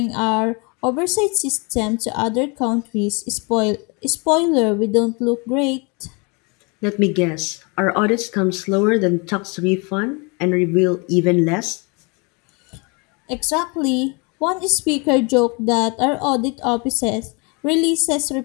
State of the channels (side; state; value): right; quieter; 30.8 dB